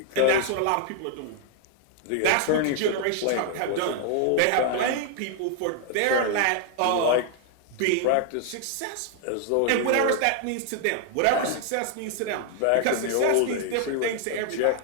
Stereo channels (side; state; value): both; different; correlation 0.00